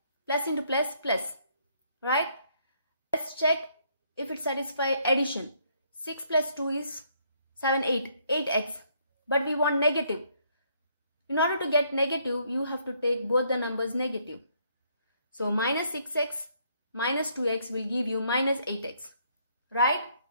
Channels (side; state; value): both; inverted; correlation -0.69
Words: Plus into plus, plus. Right? Let's check if it satisfies addition. 6 plus 2 is 7, 8x. But we want negative. In order to get negative, you have to take both the numbers negative. So minus 6x minus 2x will give you minus 8x. Right?